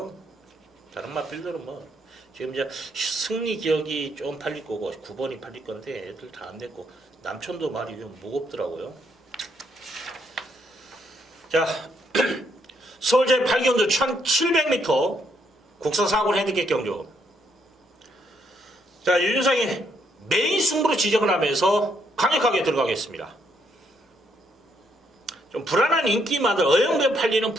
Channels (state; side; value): normal; both; correlation 0.74